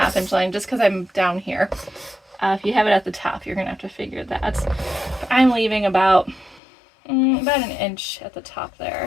inch line just because I'm down here. If you have it at the top, you're going to have to figure that. I'm leaving about an inch at the top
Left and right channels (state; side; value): drops out; right; at 6.6 s